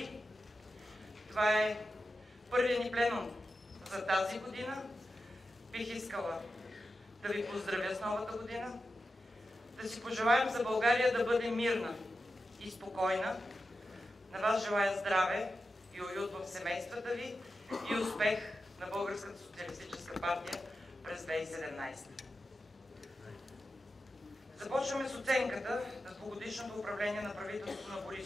Това е първият ни пленум за тази година. Бих искала да ви поздравя с новата година, да си пожелаем за България да бъде мирна и спокойна. На вас желая здраве и уют в семействата ви и успех на Българската социалистическа партия през 2017. Започваме с оценката на двугодишното управление на правителството на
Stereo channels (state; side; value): normal; both; correlation 0.91